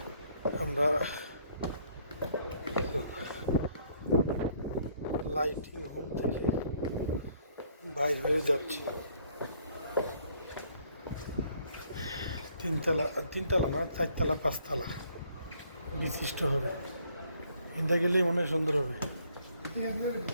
আমরা লাইটিং হোম থেকে বাইর হয়ে যাচ্ছি। তিনতলা না, চারতলা পাঁচতলা বিশিষ্ট হবে। ইন্দা গেলেই মনে হয় সুন্দর হবে।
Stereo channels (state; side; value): inverted; both; correlation -0.65